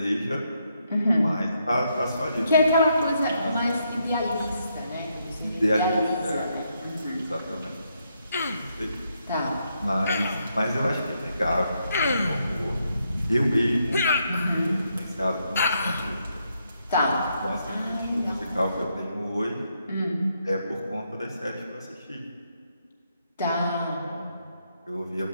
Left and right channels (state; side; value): inverted; both; correlation -0.78